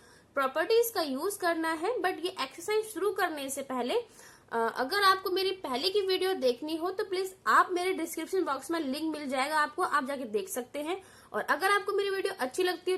प्रॉपर्टीज का यूज करना है। बट ये एक्सरसाइज शुरू करने से पहले अगर आपको मेरी पहले की वीडियो देखनी हो तो प्लीज आप मेरे डिस्क्रिप्शन बॉक्स में लिंक मिल जाएगा आपको, आप जाके देख सकते हैं। और अगर आपको मेरी वीडियो अच्छी लगती है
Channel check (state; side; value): identical; both; correlation 1.00